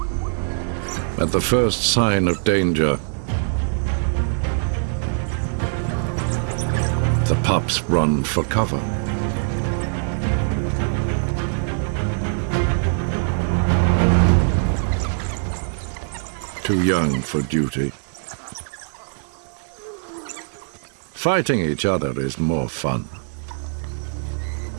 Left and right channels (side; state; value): left; silent; 64 dB below the other